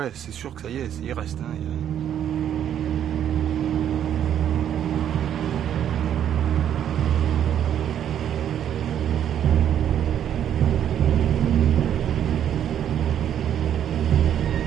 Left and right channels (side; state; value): left; quieter; 9.8 dB